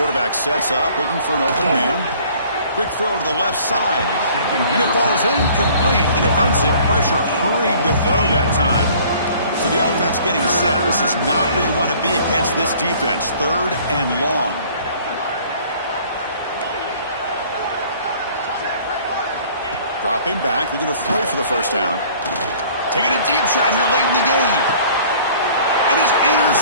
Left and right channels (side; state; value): both; inverted; correlation -0.53